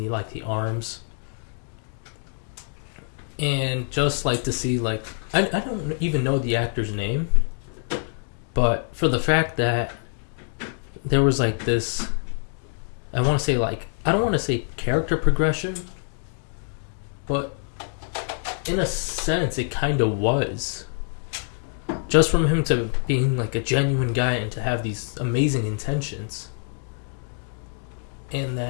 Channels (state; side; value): silent; right; 58 dB below the other